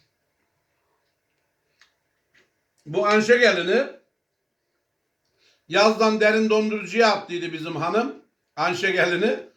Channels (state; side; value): identical; both; correlation 1.00